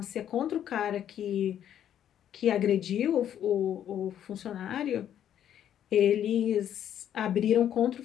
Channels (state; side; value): quieter; right; 10.2 dB